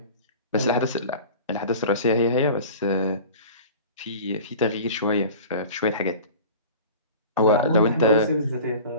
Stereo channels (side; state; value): both; inverted; correlation -0.38